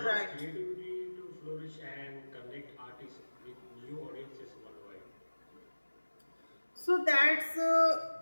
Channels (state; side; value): inverted; both; correlation -1.00